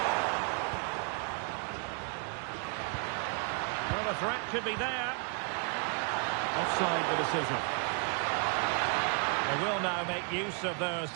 Well, the threat could be there. Offside the decision. They will now make use of their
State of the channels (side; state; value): left; quieter; 38.9 dB